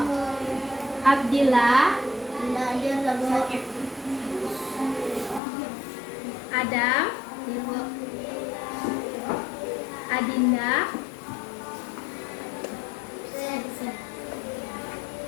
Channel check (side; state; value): right; drops out; at 5.4 s